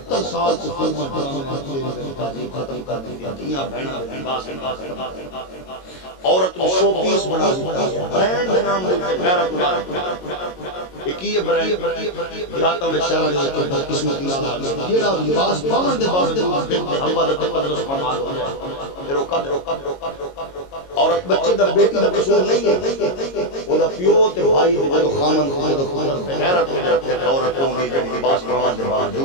سال سے فرما ڈرامہ ختم کر دی دنیا بہنا باس عورت کو شو پیس بنا دیا برانڈ کے نام دے غیرت اللہ ایک یہ برانڈ دیہاتوں میں شہر دے کے قسمتی نال جیڑا لباس پاون دے باوجود ہوا دا تقدس پناہ ہو جائے پھر عورت بچے دا بیٹی دا قصور نہیں ہے وہ دا پیو تے بھائی دے خامن خود خود غیرت ہو جاتے ہیں عورتوں دی جڑی لباس پاون دے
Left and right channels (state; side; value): late; right; 22 ms